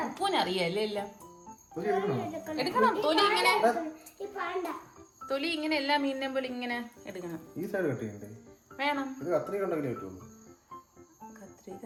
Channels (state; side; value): identical; both; correlation 1.00